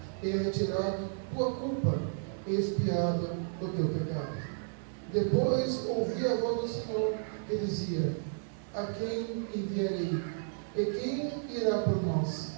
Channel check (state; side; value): silent; left; digital silence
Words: e é retirado tua culpa, e expiado o teu pecado. Depois ouvi a voz do Senhor que dizia: a quem enviarei? E quem irá por nós?